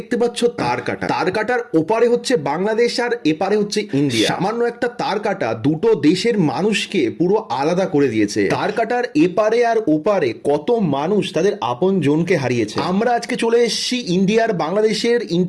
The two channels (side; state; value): both; identical; correlation 1.00